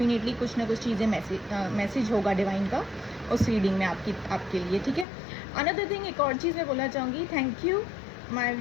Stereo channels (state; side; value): drops out; right; at 5.1 s